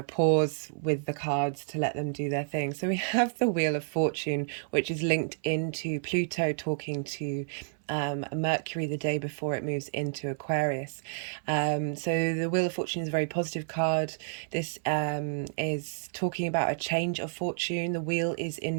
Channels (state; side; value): silent; left; 58 dB below the other